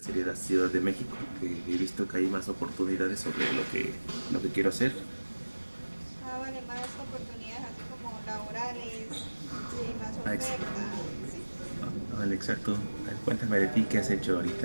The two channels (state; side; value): inverted; both; correlation -1.00